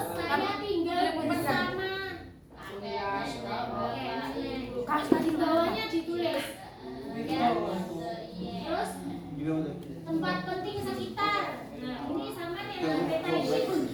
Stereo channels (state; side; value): identical; both; correlation 1.00